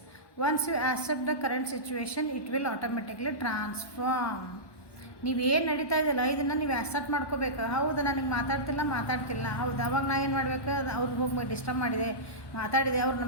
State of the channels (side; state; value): right; late; 1.1 ms